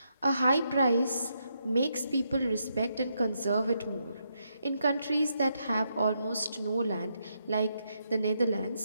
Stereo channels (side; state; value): both; inverted; correlation -0.80